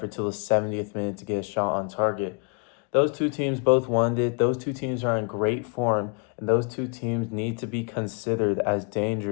till the 70th minute to get a shot on target. Those two teams both wanted it. Those two teams are in great form, and those two teams need to be considered as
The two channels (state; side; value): quieter; right; 38.0 dB